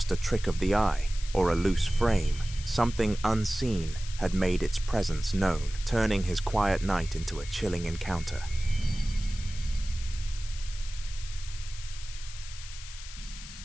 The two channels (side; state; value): left; noise; hiss, 14 dB below the sound